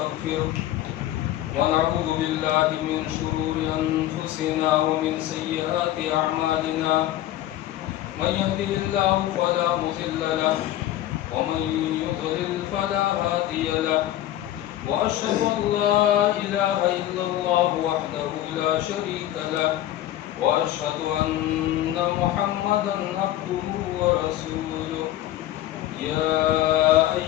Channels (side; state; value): right; quieter; 13.7 dB